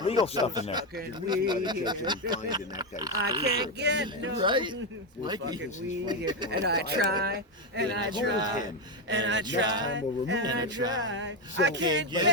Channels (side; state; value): both; normal; correlation 0.08